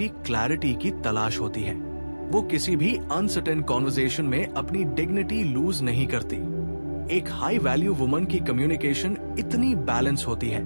क्लैरिटी की तलाश होती है। वो किसी भी अनसर्टेन कॉन्वर्सेशन में अपनी डिग्निटी लूज नहीं करती। एक हाई वैल्यू वुमन की कम्युनिकेशन इतनी बैलेंस होती है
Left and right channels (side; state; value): both; inverted; correlation -1.00